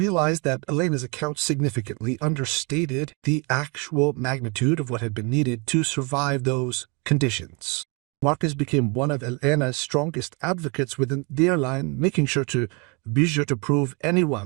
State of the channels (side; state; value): left; quieter; 31.4 dB